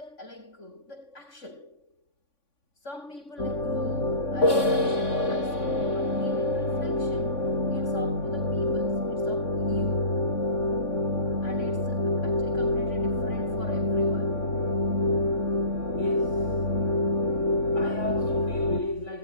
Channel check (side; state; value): right; late; 3.5 ms